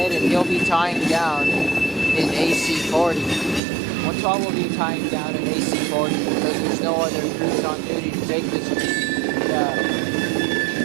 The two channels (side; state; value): left; drops out; at 3.6 s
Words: and he'll be tying down in AC40. 112 will be tying down in AC40 because there's no other crews on duty to take this. Yeah.